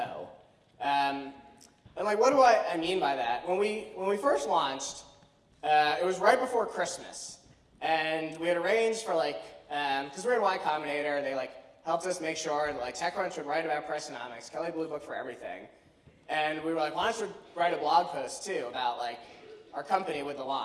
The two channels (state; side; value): identical; both; correlation 1.00